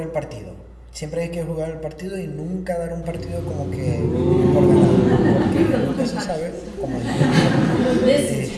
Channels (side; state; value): both; identical; correlation 1.00